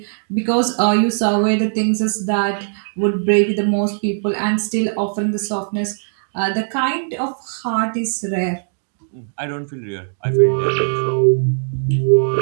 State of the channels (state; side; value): silent; left; digital silence